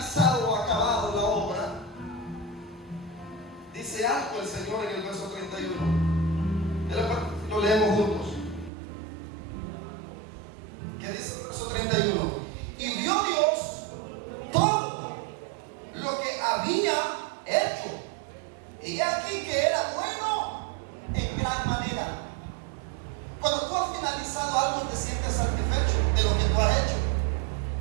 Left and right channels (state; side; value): drops out; left; at 8.7 s